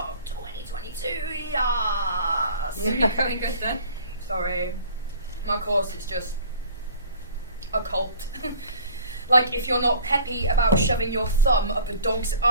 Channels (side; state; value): both; inverted; correlation -0.47